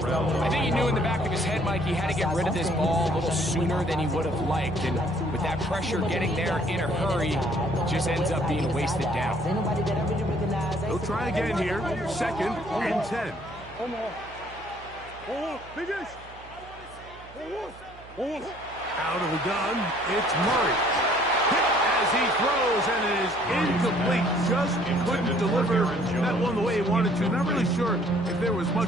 I think he knew in the back of his head, Mike, he had to get rid of this ball a little sooner than he would have liked. And with that pressure getting there in a hurry, just ends up being wasted down. He'll try again here. 2nd and 10. Out of the gun, it's Murray. As he throws, and it is incomplete. Just couldn't deliver that one the way he wanted to. Not really sure if there was much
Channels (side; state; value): right; noise; hum, 20 dB below the sound